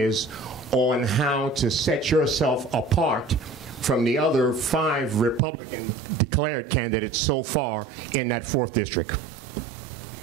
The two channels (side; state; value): left; drops out; at 5.4 s